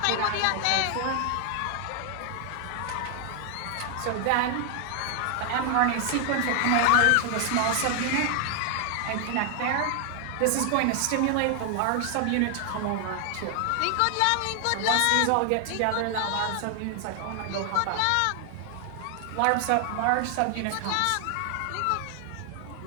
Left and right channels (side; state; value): both; different; correlation 0.00